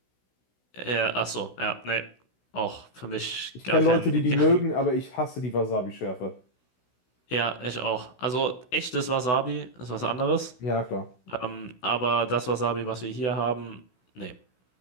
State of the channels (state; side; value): late; right; 16 ms